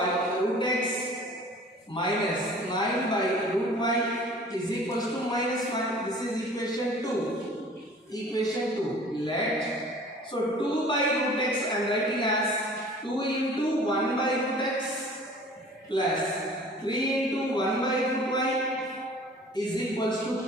root x minus 9 by root y is equals to minus 1. This is equation 2. Equation 2. Let, so 2 by root x I am writing as 2 into 1 by root x plus 3 into 1 by root y is equals to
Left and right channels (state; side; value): normal; both; correlation 0.47